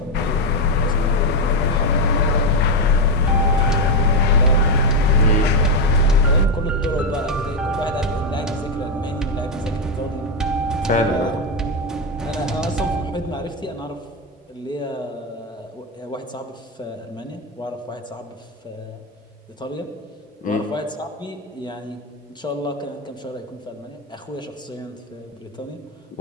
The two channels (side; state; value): both; normal; correlation 0.06